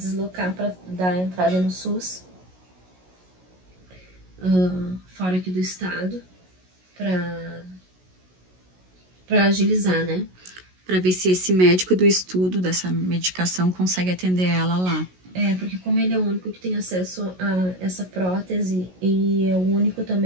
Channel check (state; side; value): late; left; 16 ms